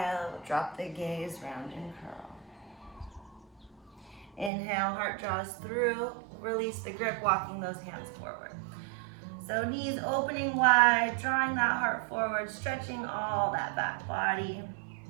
drop the gaze, round and curl. Inhale, heart draws through. Release the grip, walking those hands forward. So knees opening wide, drawing that heart forward, stretching all that back body.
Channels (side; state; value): left; drops out; at 4.5 s